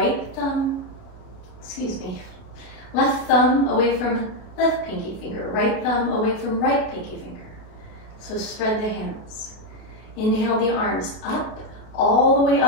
thumb, left thumb away from left pinky finger, right thumb away from right pinky finger. So spread the hands. Inhale the arms up, all the way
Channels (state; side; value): late; right; 32 ms